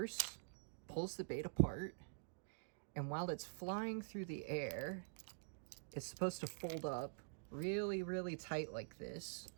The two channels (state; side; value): silent; left; digital silence